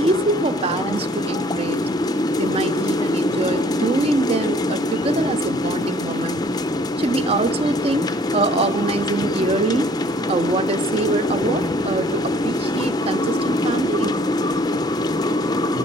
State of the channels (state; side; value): normal; both; correlation 0.57